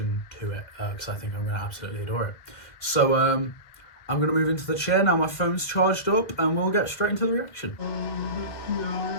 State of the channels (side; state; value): right; late; 1.8 ms